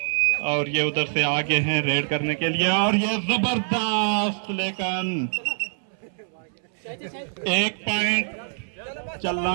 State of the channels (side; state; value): left; silent; 62 dB below the other